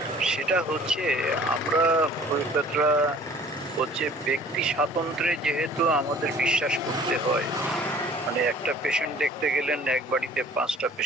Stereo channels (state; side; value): normal; both; correlation 0.51